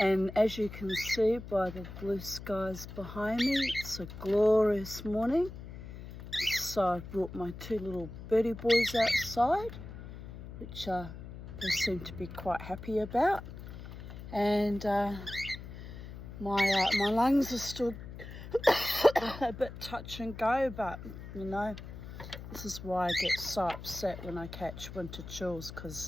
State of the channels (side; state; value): left; noise; hum, 12 dB below the sound